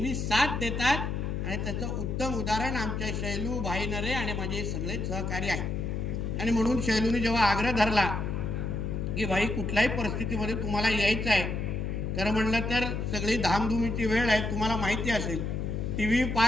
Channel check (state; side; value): noise; left; hum, 2 dB below the sound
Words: साथ देतात आणि त्याचं उत्तम उदाहरण आमच्या शैलू, भाई नरे आणि माझे सगळे सहकारी आहेत. आणि म्हणून शैलूने जेव्हा आग्रह धरला की भाई कुठल्याही परिस्थितीमध्ये तुम्हाला यायचं आहे, खरं म्हणलं तर सगळी धामधुमीची वेळ आहे, तुम्हाला माहिती असेल, टीव्ही